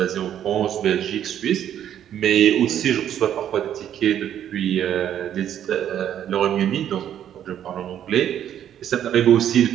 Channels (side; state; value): left; quieter; 10.3 dB